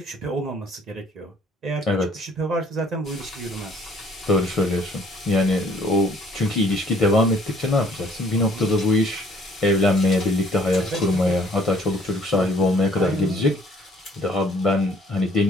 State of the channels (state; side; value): normal; both; correlation 0.59